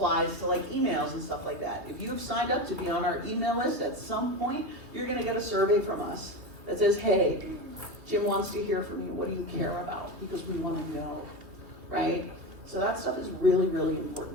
to like emails and stuff like that. If you've signed up to be on our email list, at some point, you're going to get a survey from us that says, hey, Jim wants to hear from you. What do you care about? Because we want to know, right? So that stuff is really, really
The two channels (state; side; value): late; left; 2.6 ms